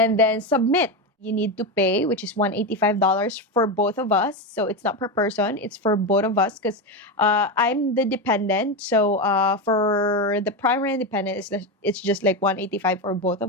then submit. You need to pay, which is $185 for both of us. So it's not per person, it's for both of us because I'm the dependent. So for the primary and dependent, it's just like $185 for both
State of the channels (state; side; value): normal; both; correlation 0.14